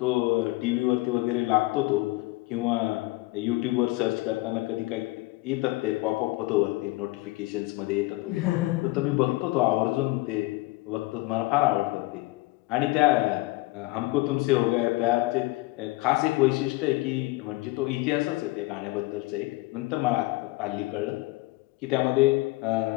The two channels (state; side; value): quieter; right; 21.2 dB